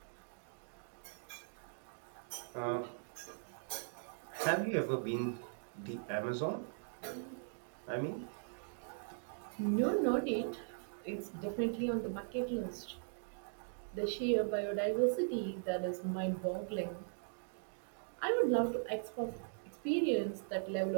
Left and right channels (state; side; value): silent; left; digital silence